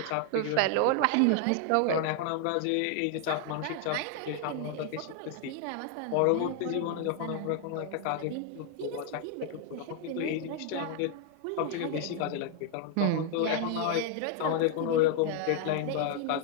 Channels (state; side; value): different; both; correlation 0.00